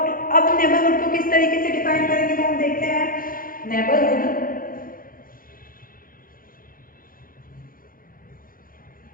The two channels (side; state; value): right; late; 0.41 ms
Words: नेबरहुड को किस तरीके से डिफाइन करेंगे, तो हम देखते हैं नेबरहुड